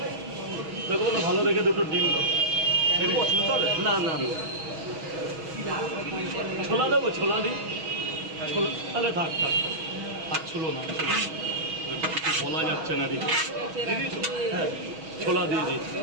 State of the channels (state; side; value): late; left; 6.3 ms